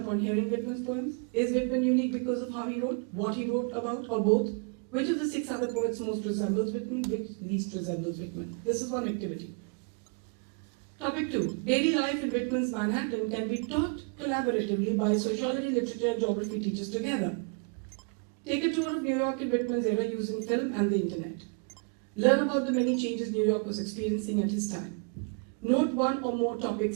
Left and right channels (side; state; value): left; quieter; 38.1 dB